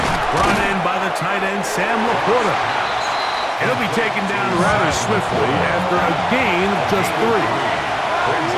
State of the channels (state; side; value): identical; both; correlation 1.00